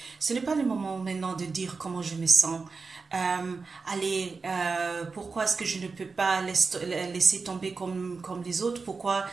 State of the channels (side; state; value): left; quieter; 4.5 dB